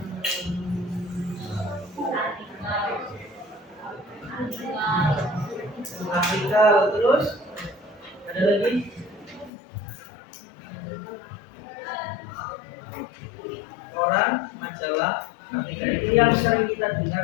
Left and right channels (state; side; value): drops out; right; at 9.5 s